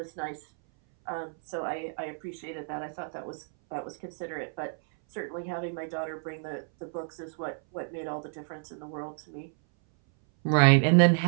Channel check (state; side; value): silent; left; 58 dB below the other